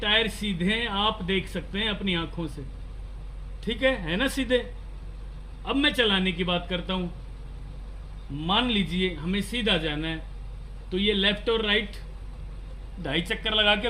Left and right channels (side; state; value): both; identical; correlation 1.00